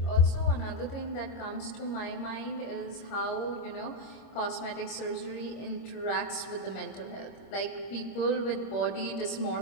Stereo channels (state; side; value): late; right; 25 ms